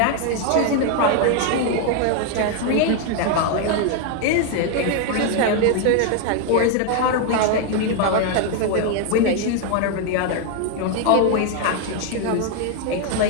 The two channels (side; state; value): both; different; correlation 0.01